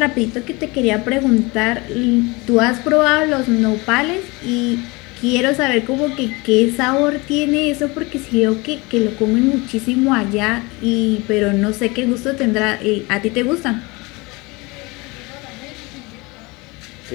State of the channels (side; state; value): right; quieter; 25.1 dB